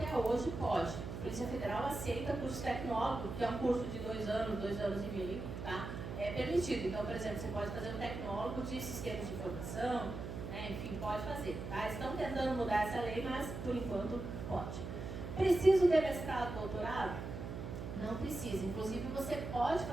hoje pode. A Polícia Federal aceita curso tecnólogo, que é um curso de 2 anos, 2 anos e meio, tá? É permitido. Então, por exemplo, você pode fazer um tecnólogo de sistemas de informação, né? Enfim, pode fazer. Tá? Estão tentando mudar essa lei, mas por enquanto pode. Preciso de mestrado, doutorado? Não precisa. Inclusive, você pode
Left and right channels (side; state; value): right; noise; hum, 7 dB below the sound